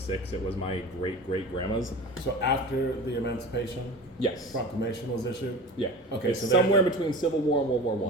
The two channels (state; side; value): normal; both; correlation 0.34